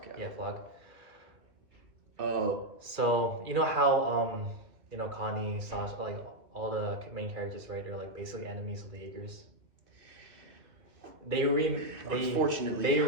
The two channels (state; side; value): late; left; 2.7 ms